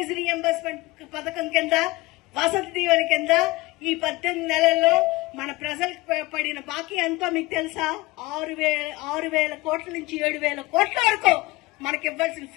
రీఎంబర్స్మెంట్ పథకం కింద, వసతి దీవెన కింద ఈ 18 నెలల్లో మన ప్రజలకు పడిన బాకీ ఎంతో మీకు తెలుసా? 6,000 కోట్ల నుంచి 7,000 కోట్ల వరకు మనకి ఇవ్వాల్సిన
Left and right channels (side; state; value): right; quieter; 20.9 dB